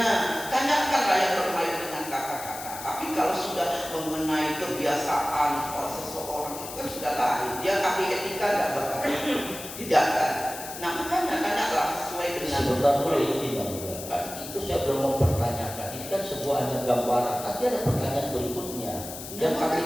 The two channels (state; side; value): noise; left; hiss, 11 dB below the sound